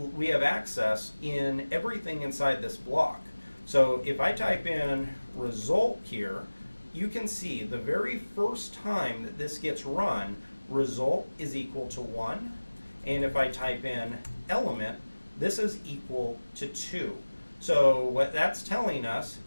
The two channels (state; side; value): inverted; both; correlation -1.00